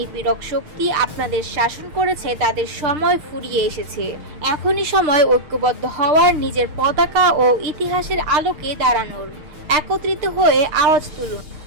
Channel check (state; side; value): late; left; 6.5 ms